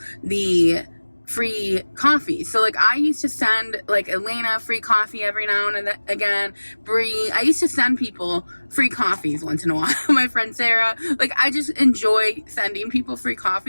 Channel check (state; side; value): inverted; both; correlation -1.00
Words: the free coffee. So like I used to send like Elena free coffee every now and again, Bree. I used to send people free coffees once in a while. My friend Sarah. Like I just enjoy sending people free